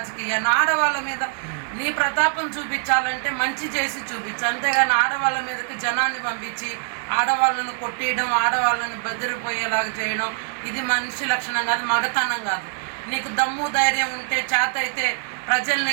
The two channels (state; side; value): silent; left; digital silence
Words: ఆడవాళ్ళ మీద నీ ప్రతాపం చూపించాలంటే మంచి చేసి చూపించు, అంతేగాని ఆడవాళ్ళ మీదకి జనాన్ని పంపించి ఆడవాళ్ళను కొట్టేయడం, ఆడవాళ్ళని బెదిరిపోయేలాగా చేయడం ఇది మనిషి లక్షణం కాదు, మగతనం కాదు. నీకు దమ్ము ధైర్యం ఉంటే చేత అయితే ప్రజల్ని